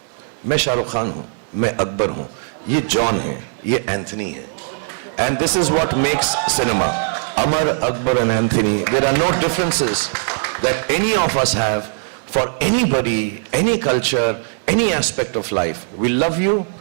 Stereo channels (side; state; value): left; silent; 66 dB below the other